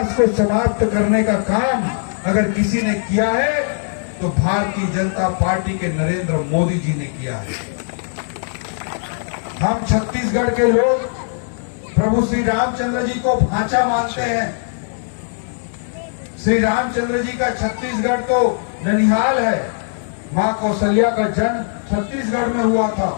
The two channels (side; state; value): right; silent; digital silence